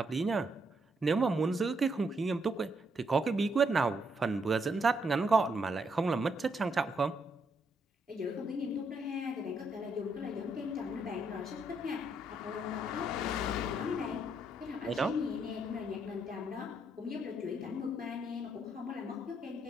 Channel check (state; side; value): normal; both; correlation 0.75